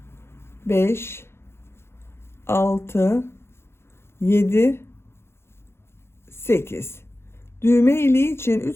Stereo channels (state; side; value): late; right; 0.12 ms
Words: 5 6 7 8 düğme iliği için 3